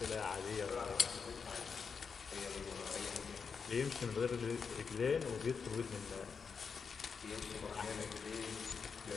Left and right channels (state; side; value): quieter; right; 5.7 dB